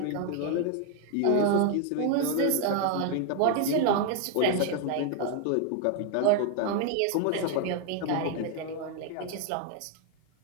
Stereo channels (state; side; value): different; both; correlation 0.01